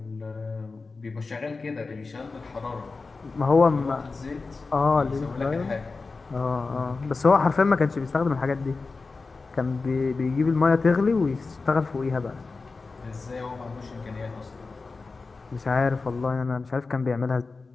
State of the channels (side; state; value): right; quieter; 4.0 dB